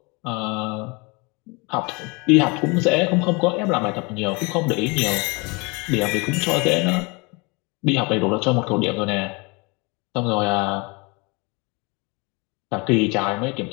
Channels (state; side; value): quieter; right; 28.4 dB